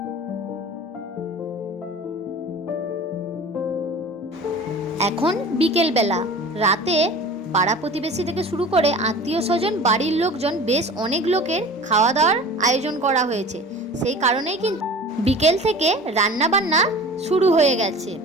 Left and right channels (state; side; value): normal; both; correlation 0.40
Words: এখন বিকেলবেলা, রাতে পাড়া প্রতিবেশী থেকে শুরু করে আত্মীয় স্বজন, বাড়ির লোকজন, বেশ অনেক লোকের খাওয়া দাওয়ার আয়োজন করা হয়েছে। সেই কারণেই কিন্তু বিকেল থেকে রান্না বান্না শুরু হয়ে গেছে।